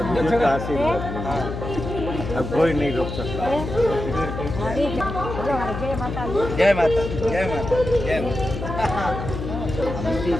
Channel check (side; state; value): left; noise; hum, 6 dB below the sound